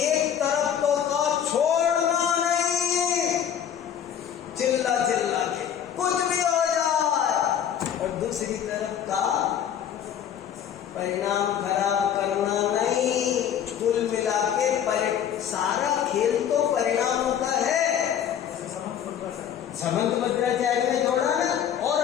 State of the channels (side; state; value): right; quieter; 9.3 dB